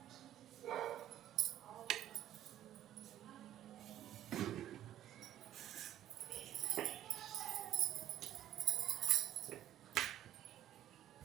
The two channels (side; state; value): left; quieter; 12.9 dB